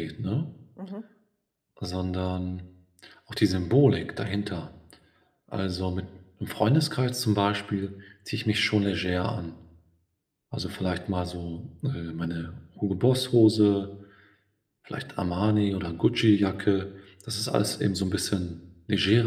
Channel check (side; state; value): both; identical; correlation 1.00